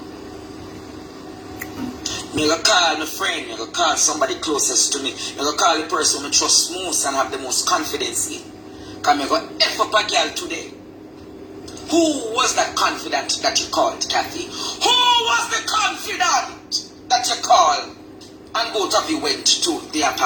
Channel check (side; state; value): both; identical; correlation 1.00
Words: I'm going to call my friend, I'm going to call somebody closest to me. I'm going to call the person I trust most and have the most confidence in. Because I'm going to F up a girl today. Who was that confidant that you called, Kathy? Who was the confidant that you called and both of you went to the